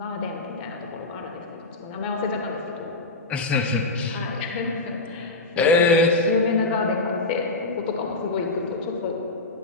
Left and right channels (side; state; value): right; quieter; 3.1 dB